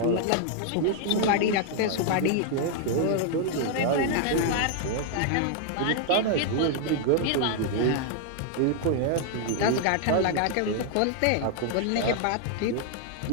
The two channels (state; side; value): different; both; correlation 0.00